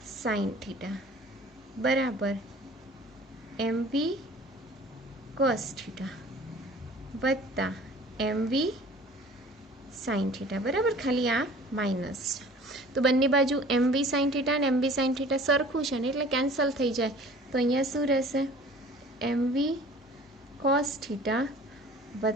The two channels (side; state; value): both; normal; correlation 0.47